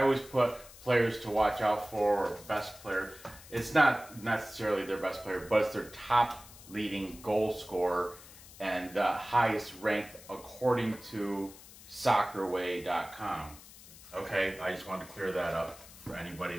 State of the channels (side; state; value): left; noise; hiss, 19 dB below the sound